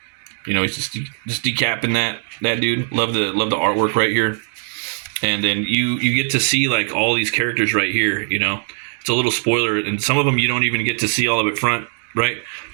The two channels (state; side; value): silent; left; 57 dB below the other